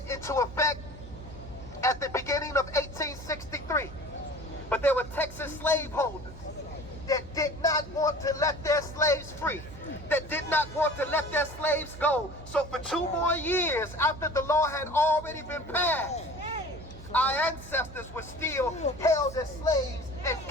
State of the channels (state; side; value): noise; right; hum, 14 dB below the sound